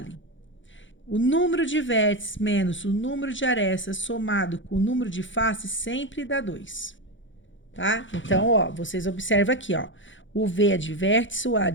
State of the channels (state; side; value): late; right; 0.55 ms